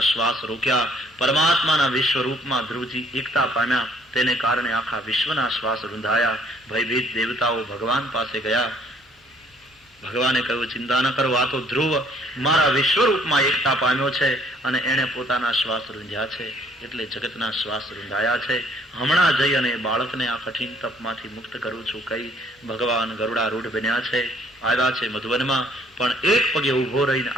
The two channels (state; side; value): normal; both; correlation 0.62